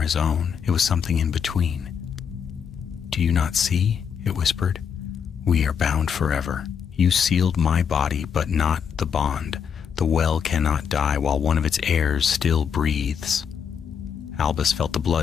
his own. It was something in between. "Do you not see?" it whispered. "We are bound forever. You sealed my body, but not the bond. The well cannot die while one of its heirs still breathes." Albus felt the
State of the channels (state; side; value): quieter; right; 7.2 dB